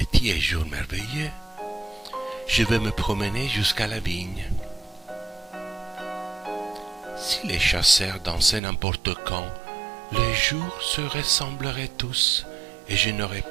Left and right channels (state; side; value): drops out; left; at 8.6 s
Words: est jour merveilleux. Je vais me promener jusqu'à la vigne. Si les chasseurs dansaient n'importe quand, les jours se ressembleraient tous et je n'aurais